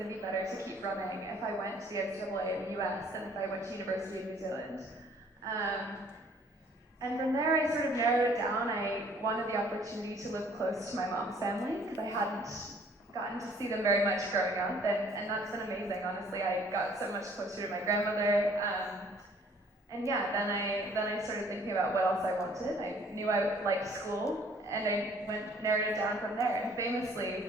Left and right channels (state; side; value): normal; both; correlation 0.58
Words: to be better to keep running if I went to the NCAA in the US than if I went to University of New Zealand. And from there, I sort of narrowed it down. I wanted the opportunity to live close to my mom's family because I hadn't gotten to see them very much growing up, and that's been amazing. Honestly, I got so much closer to my grandmother. And yeah, then I started thinking about what else I wanted. I knew I liked school, and I narrowed it down from there. And